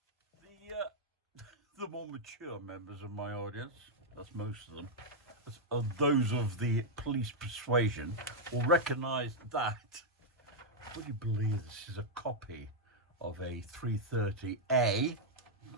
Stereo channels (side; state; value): both; normal; correlation -0.03